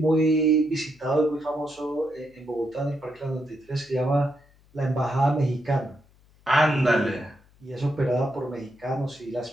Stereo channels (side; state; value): left; noise; hum, 30 dB below the sound